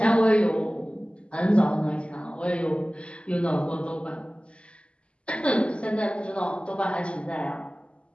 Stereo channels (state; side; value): late; right; 0.056 ms